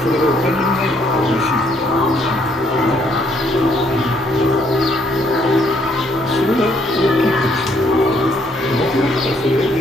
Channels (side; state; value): both; normal; correlation 0.68